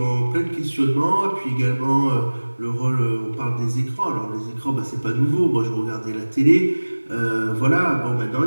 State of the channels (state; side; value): inverted; both; correlation -1.00